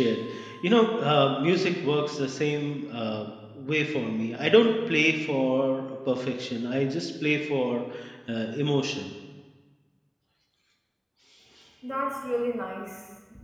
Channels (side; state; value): both; identical; correlation 1.00